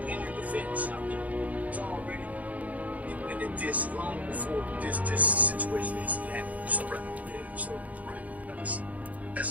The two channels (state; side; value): late; left; 0.073 ms